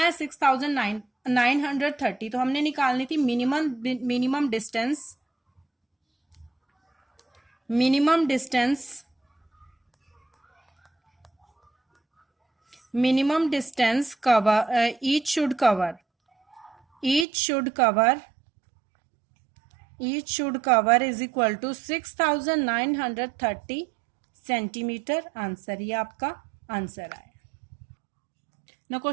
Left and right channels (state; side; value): drops out; left; at 17.2 s